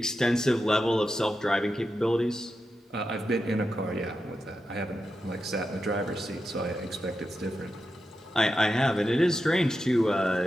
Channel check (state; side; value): normal; both; correlation 0.89